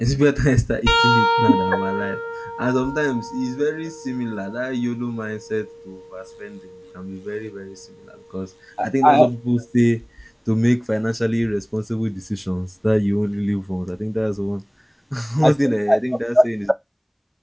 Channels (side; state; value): both; identical; correlation 1.00